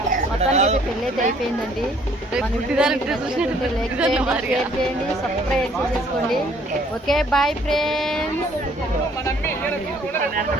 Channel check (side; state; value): both; normal; correlation 0.61